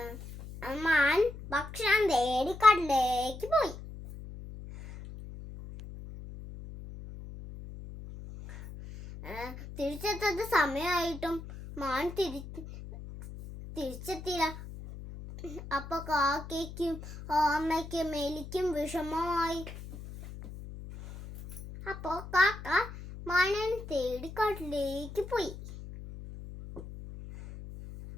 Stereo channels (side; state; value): left; noise; hum, 12 dB below the sound